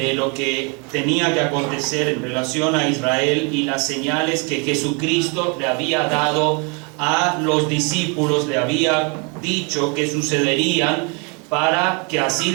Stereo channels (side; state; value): left; quieter; 33.5 dB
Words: lo que tenía que acontecer en relación a Israel y las señales que Jesucristo le había dado a los discípulos, le había dicho que sucederían, para que así